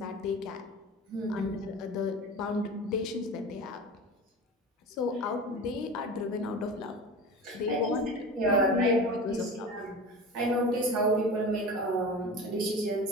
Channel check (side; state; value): both; normal; correlation 0.33